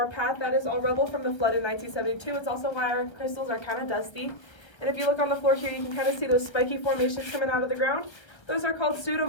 path. That is all rubble from the flood in 1972. It's also why our crystals are kind of dusty. And if you look on the floor here, you can kind of see those spiky formations coming out of the ground. Those are called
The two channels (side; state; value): right; late; 1.3 ms